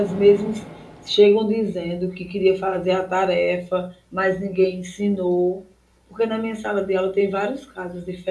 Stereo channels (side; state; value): both; identical; correlation 1.00